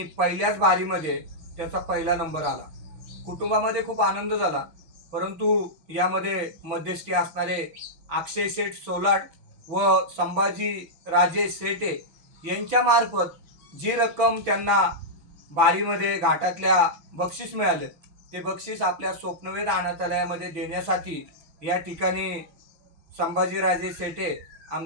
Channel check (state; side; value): late; left; 6.0 ms